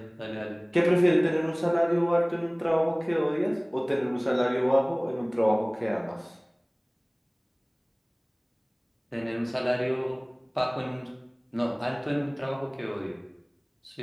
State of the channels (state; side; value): identical; both; correlation 1.00